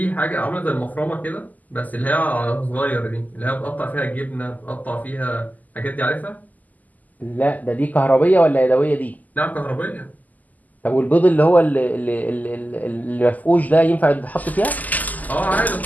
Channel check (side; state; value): right; late; 0.080 ms